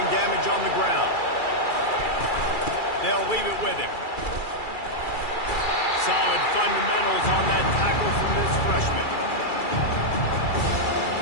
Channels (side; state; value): right; late; 2.3 ms